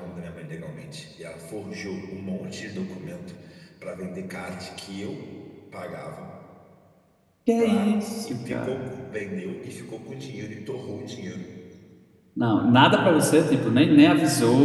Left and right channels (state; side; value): identical; both; correlation 1.00